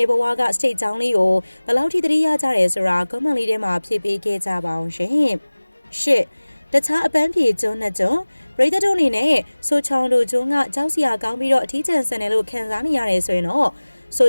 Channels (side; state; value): both; inverted; correlation -1.00